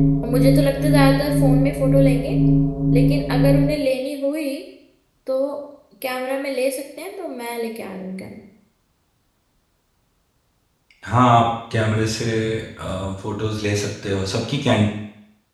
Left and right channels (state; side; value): identical; both; correlation 1.00